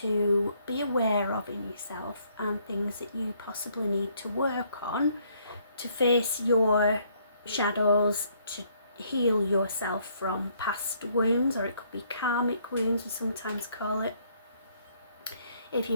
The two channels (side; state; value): both; inverted; correlation -0.68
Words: be aware of in yourself and things that you possibly need to work on to face your shadows, to heal yourself from past wounds, or it could be karmic wounds, we sometimes call it. If